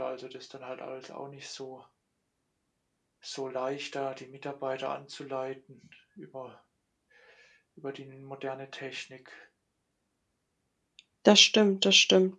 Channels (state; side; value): identical; both; correlation 1.00